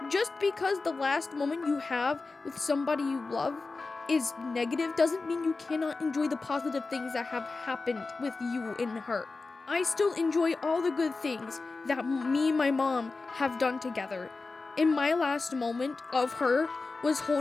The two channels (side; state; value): right; quieter; 3.8 dB